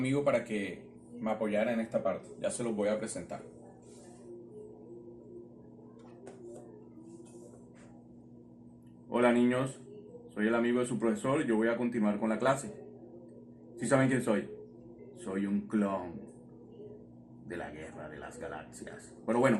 para que me apoyara en esta parte. Ya se los voy a presentar. Hola, niños. Soy el amigo de su profesor y yo voy a continuar con la clase. ¿Sí saben quién soy? Soy un clon de la Guerra de las Galaxias. Pero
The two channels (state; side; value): identical; both; correlation 1.00